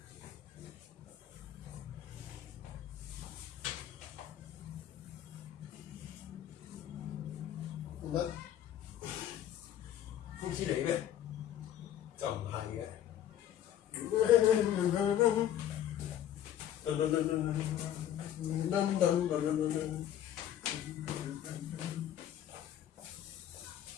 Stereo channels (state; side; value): quieter; right; 11.0 dB